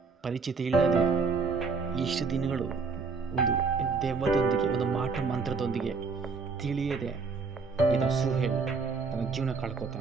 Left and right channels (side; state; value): left; quieter; 4.7 dB